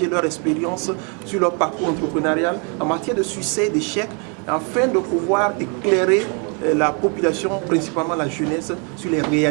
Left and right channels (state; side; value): quieter; left; 36.2 dB